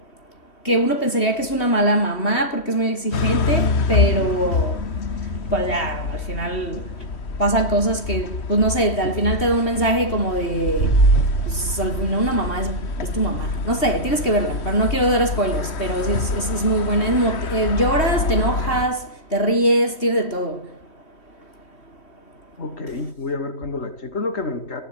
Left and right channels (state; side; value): late; right; 3.1 ms